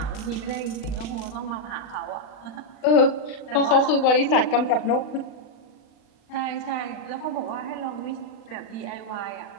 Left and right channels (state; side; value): late; right; 40 ms